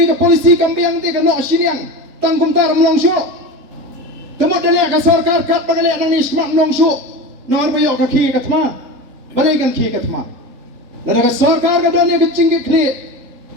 ke polisi kambiang te ke nok siniang. Tangkum tar melong show. Temut dalek ke sarkar kat bagalek nang ni smak melong show. Nor bayok ke ki ke thema. Balai kan ki ke thema. Lada ke sarkar ke dan ke cingke kri.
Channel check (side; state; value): left; late; 3.8 ms